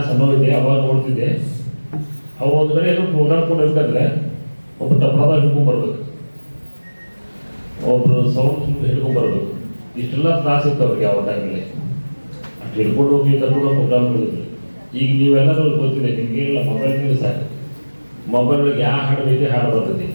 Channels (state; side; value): inverted; both; correlation -1.00